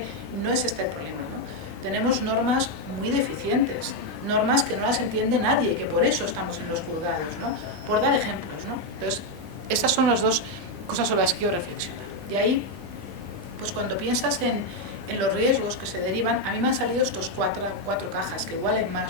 no es este el problema. Tenemos normas muy deficientes, normas que no las entiende nadie, que por eso estamos en los juzgados, ¿no? Por dar ejemplos, ¿no? Entonces, estas son las dos cosas sobre las que yo reflexiono. Y ahí, pues cuando piensas en los riesgos que se derivan, a mí me han salido estos cuatro cajas, que igualen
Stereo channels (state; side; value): normal; both; correlation 0.03